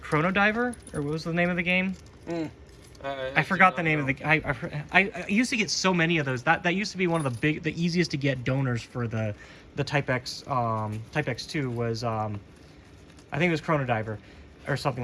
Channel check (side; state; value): both; identical; correlation 1.00